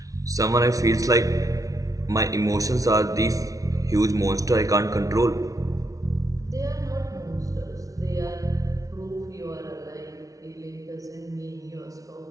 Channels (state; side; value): late; left; 0.17 ms